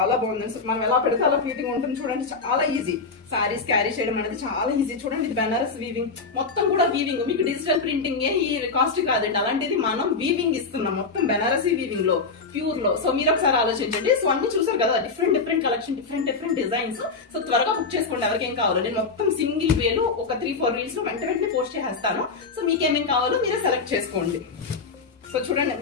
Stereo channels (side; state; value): right; quieter; 4.4 dB